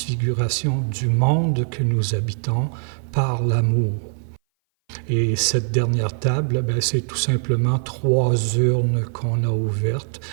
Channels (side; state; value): left; silent; 59 dB below the other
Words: du monde que nous habitons par l'amour. Et cette dernière table, c'est tout simplement 3 urnes qu'on a ouvertes